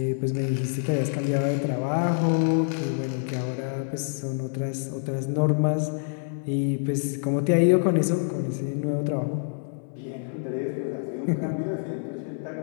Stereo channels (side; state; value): right; silent; digital silence